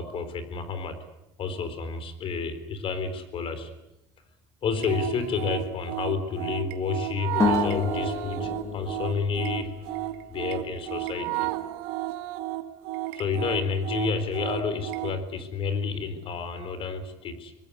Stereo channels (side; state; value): both; normal; correlation 0.33